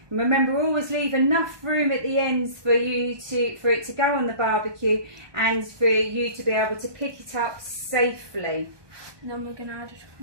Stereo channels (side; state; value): left; late; 1.2 ms